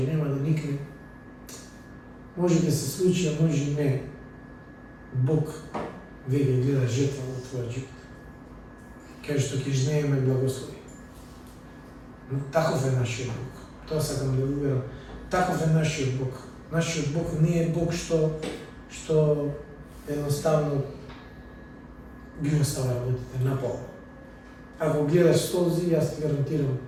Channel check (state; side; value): identical; both; correlation 1.00